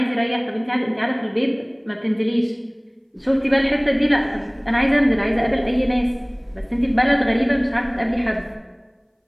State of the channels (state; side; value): identical; both; correlation 1.00